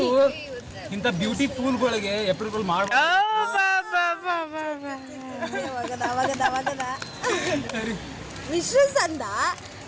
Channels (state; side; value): identical; both; correlation 1.00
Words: ಇಂಥ ಬ್ಯೂಟಿ ಫೂಲ್ಗಳಿಗೆ ಏಪ್ರಿಲ್ ಫುಲ್ ಮಾಡ ವಿಶಸ್ ಅಂದ